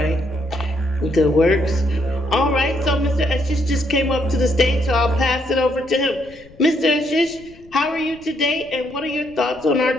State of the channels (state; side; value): noise; left; rumble, 24 dB below the sound